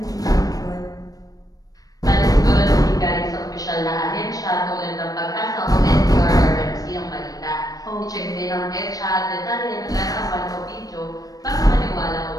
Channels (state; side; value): late; right; 0.18 ms